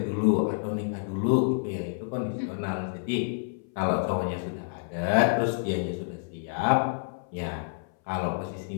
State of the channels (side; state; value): right; silent; 59 dB below the other